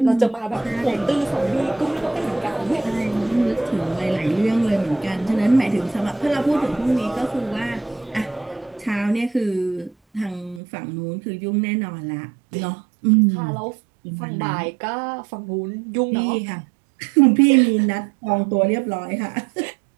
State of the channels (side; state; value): left; drops out; at 10.6 s